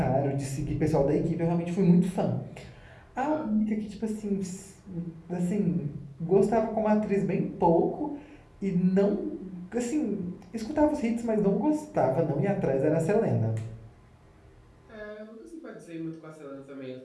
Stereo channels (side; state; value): both; identical; correlation 1.00